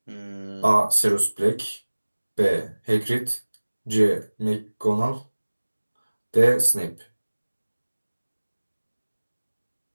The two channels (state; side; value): inverted; both; correlation -1.00